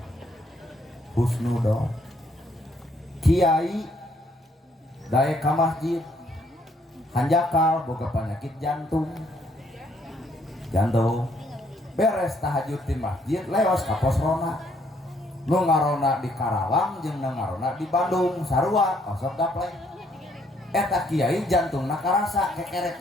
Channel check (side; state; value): both; normal; correlation 0.68